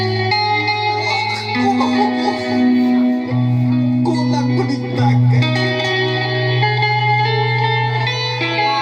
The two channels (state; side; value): identical; both; correlation 1.00